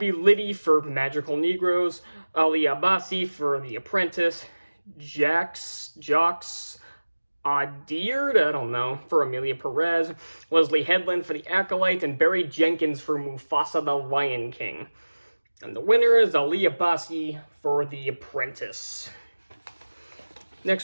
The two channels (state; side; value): inverted; both; correlation -1.00